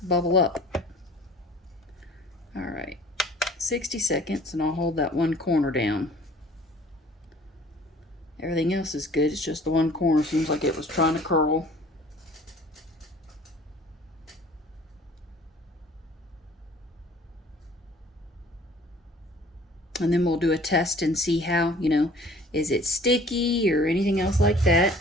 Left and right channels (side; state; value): both; normal; correlation 0.50